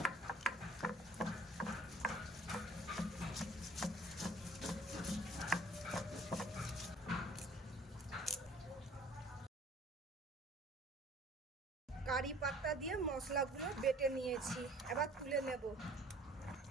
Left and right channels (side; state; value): both; normal; correlation 0.53